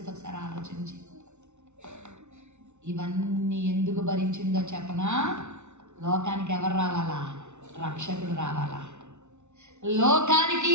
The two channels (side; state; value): left; late; 0.82 ms